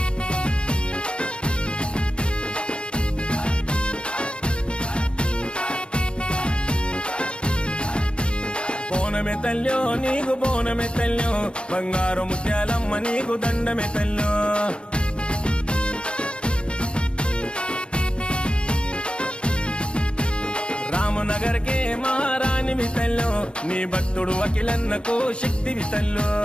బోనమే తల్లో నీకు బోనమే తల్లో బంగారు ముత్యాలమ్మ నీకు దండమే తల్లో రామనగర్ కే మహారాణి వితల్లో నీ భక్తుడు అఖిలన్నకు శక్తి వితల్లో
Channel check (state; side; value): late; right; 0.055 ms